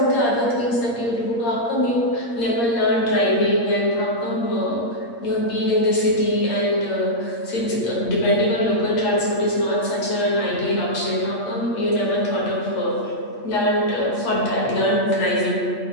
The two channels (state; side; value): late; right; 8.5 ms